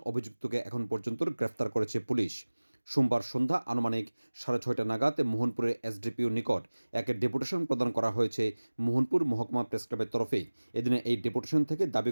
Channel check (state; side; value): inverted; both; correlation -1.00